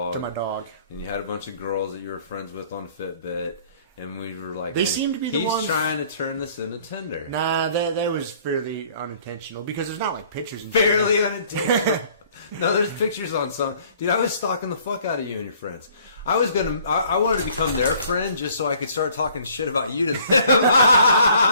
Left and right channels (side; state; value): both; inverted; correlation -0.57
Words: To my dog. And you had a bunch of girls that you were friends with on Fitbit. And we were like, they seem to be the ones... He's trying to turn this into Tinder. Nah, that was fairly unintentional. Because there's not like pictures. Fairly unintentional. No, there's pictures on some. Dude, I was stalking the fuck out of you and your friends. I wanted to become their friend just so I could start talking shit about you to them.